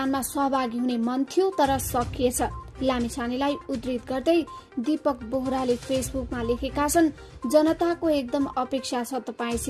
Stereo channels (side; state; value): both; identical; correlation 1.00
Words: सहभागी हुने मन थियो तर सकिएछ। लामिछानेलाई उद्धृत गर्दै दीपक बोहराले फेसबुकमा लेखेका छन्, जनताको एकदम अपेक्षा छ